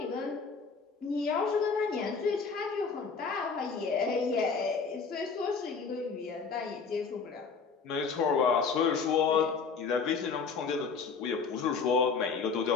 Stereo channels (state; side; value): quieter; right; 5.2 dB